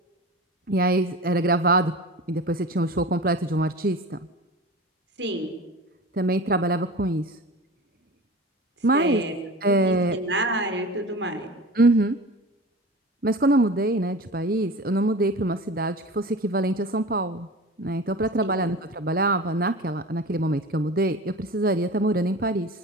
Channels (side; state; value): both; normal; correlation 0.34